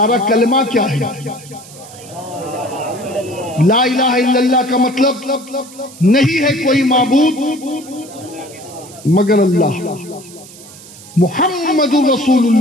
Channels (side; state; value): right; noise; hiss, 19 dB below the sound